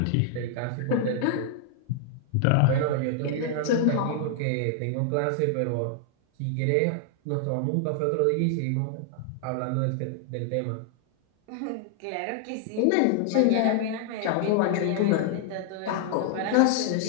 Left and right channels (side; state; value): both; different; correlation -0.01